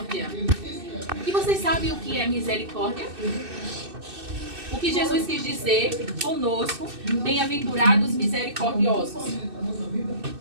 E vocês sabem o que é misericórdia? O que Jesus quis dizer conosco: bem-aventurados misericordiosos.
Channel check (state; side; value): late; left; 2.6 ms